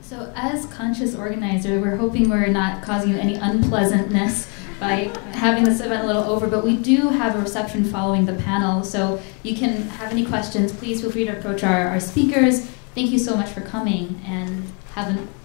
as conscious organizer, we're hoping we're not causing you any unpleasantness by having this event a little over, but we do have a reception following the panel, so you can have any questions, please feel free to approach our speakers. Thank you so much for coming, and have a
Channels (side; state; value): right; quieter; 35.6 dB